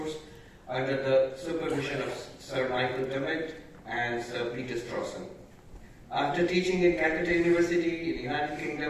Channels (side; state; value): both; identical; correlation 1.00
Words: under the supervision of Sir Michael Dummett and Sir Peter Strawson. After teaching in Calcutta University in the United